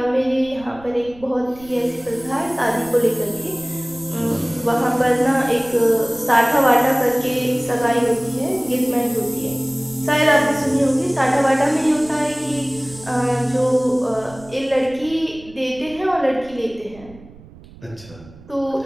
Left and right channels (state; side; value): noise; right; rumble, 21 dB below the sound